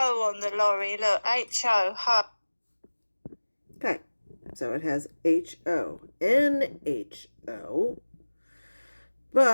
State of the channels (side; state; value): both; inverted; correlation -1.00